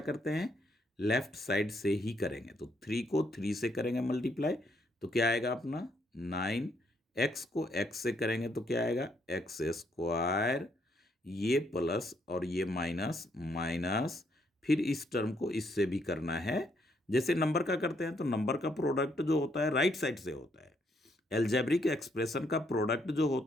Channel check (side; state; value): both; normal; correlation 0.73